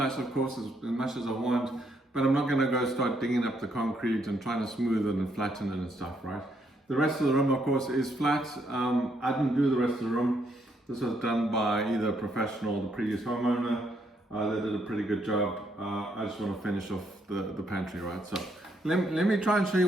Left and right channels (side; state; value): both; normal; correlation 0.74